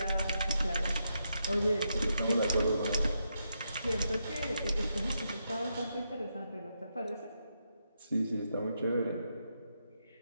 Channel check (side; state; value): both; inverted; correlation -0.82